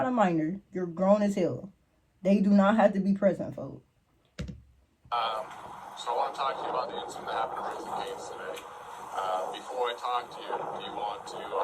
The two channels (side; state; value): both; identical; correlation 1.00